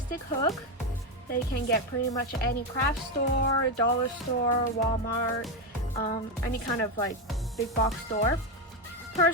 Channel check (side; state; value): both; normal; correlation 0.09